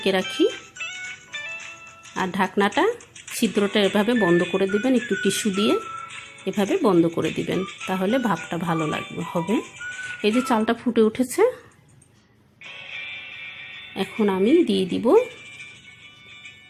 রাখি, আর ঢাকনাটা ছিদ্রটা এভাবে বন্ধ করে দিবেন, একটু টিস্যু দিয়ে এভাবে বন্ধ করে দিবেন, তাহলে ভাপটা ভালো হবে। এই যে চালটা ফুটে উঠেছে, এখন আমি দিয়ে দিব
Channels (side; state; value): both; identical; correlation 1.00